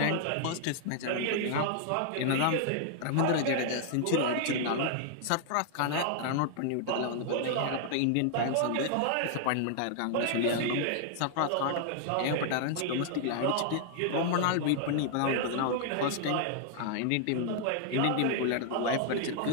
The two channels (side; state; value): both; different; correlation 0.00